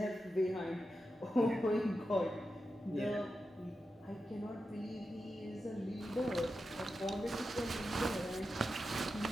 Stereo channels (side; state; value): both; normal; correlation 0.90